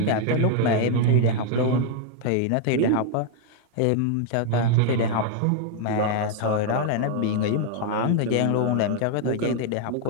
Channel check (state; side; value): different; both; correlation 0.00